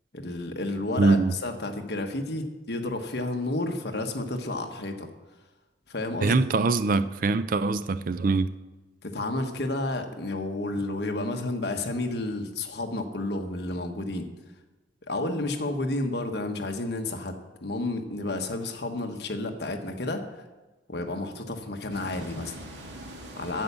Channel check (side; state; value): both; normal; correlation 0.49